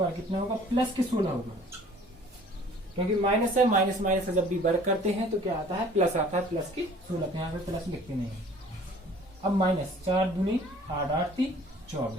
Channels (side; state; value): both; normal; correlation 0.51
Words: कितना होगा, प्लस के 16 होगा, क्योंकि माइनस है, माइनस माइनस से जब भी वर्ग करते हैं तो क्या आता है, प्लस आता है, प्लस के 16। यहाँ पे प्लस लिखते नहीं है। अब -4 दूनी 8 8 3